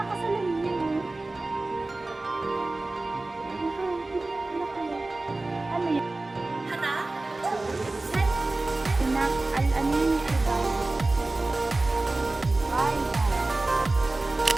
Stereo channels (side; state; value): left; quieter; 3.0 dB